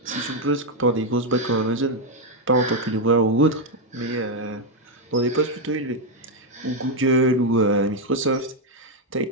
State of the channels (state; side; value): normal; both; correlation 0.02